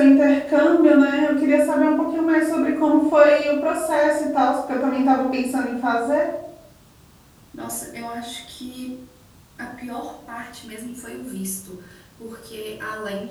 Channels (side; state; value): both; identical; correlation 1.00